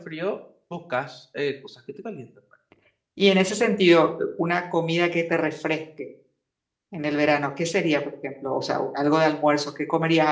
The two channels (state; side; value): identical; both; correlation 1.00